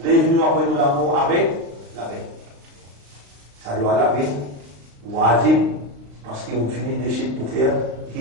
Lève-nous après nous l'amour avec la vérité. Ça doit la vie, wajib, parce qu'on finit de suite pour faire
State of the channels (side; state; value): left; late; 35 ms